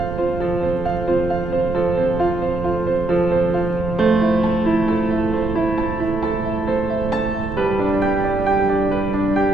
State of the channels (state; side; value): noise; right; rumble, 7 dB below the sound